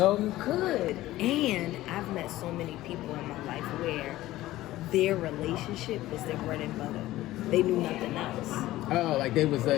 You could. And I've met so many people in my life where their relationship was their bread and butter. They knew nothing else. Oh, they was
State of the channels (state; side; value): quieter; right; 16.1 dB